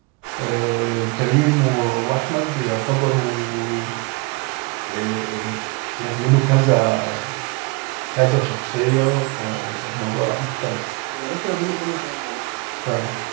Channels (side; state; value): left; quieter; 26.9 dB